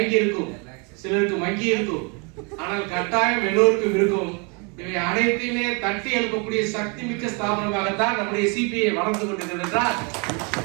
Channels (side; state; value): left; quieter; 33.3 dB